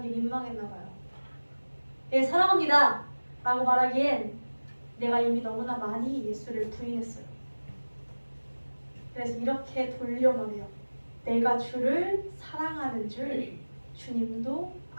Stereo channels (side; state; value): both; inverted; correlation -1.00